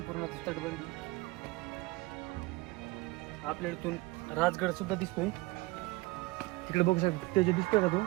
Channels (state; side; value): quieter; left; 21.8 dB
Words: तटबंदी. आपल्या इथून राजगड सुद्धा दिसतोय. तिकडे बघू शकतो ते जे दिसतोय का तो